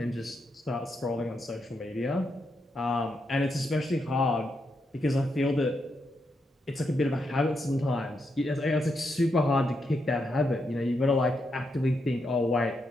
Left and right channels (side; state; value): both; normal; correlation 0.82